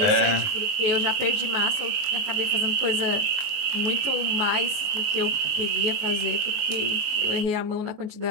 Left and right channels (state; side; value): late; left; 19 ms